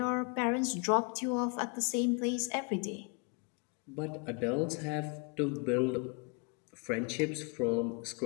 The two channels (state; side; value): quieter; right; 33.7 dB